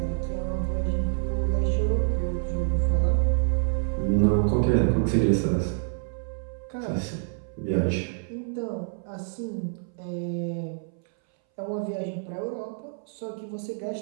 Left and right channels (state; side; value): silent; left; 60 dB below the other